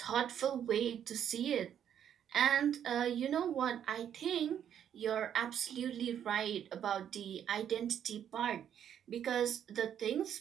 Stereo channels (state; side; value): quieter; left; 9.4 dB